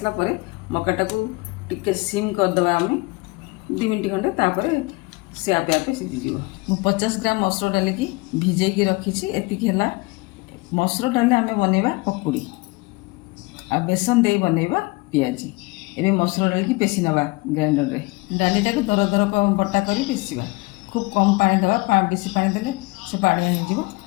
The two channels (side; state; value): right; quieter; 24.9 dB